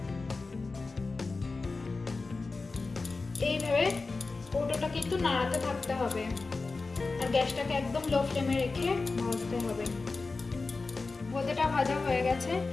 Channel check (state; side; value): quieter; right; 3.9 dB